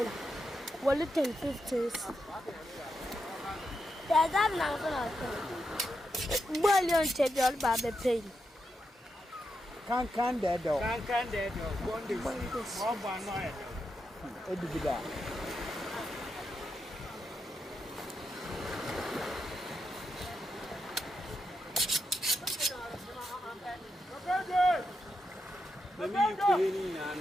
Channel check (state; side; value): normal; both; correlation 0.85